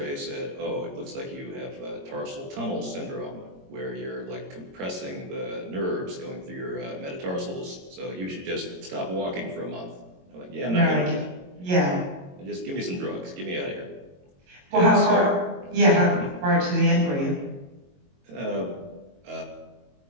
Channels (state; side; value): late; left; 22 ms